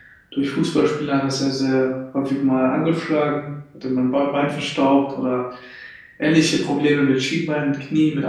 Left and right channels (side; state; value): both; identical; correlation 1.00